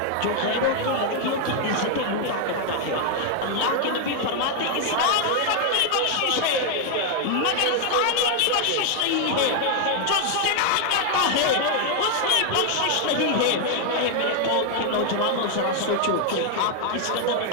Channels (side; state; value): both; different; correlation 0.00